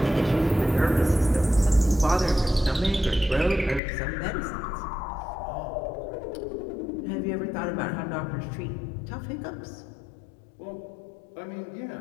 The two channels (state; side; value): drops out; right; at 3.8 s